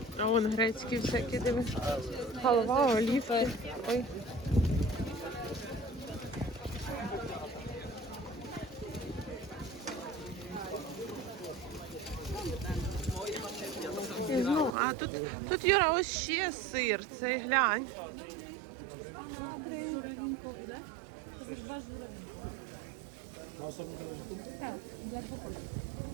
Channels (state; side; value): drops out; left; at 14.8 s